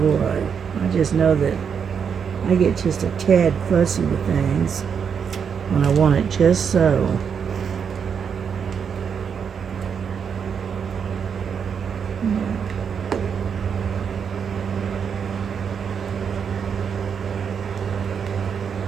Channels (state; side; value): quieter; left; 6.9 dB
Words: what. I just know that I get just a tad fussy with things when I want it just so.